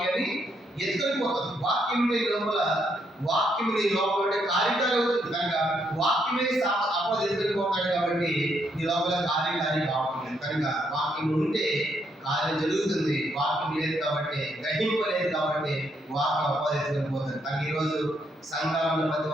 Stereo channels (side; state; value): both; normal; correlation 0.75